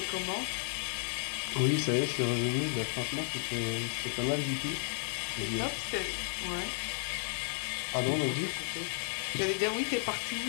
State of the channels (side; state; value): right; silent; digital silence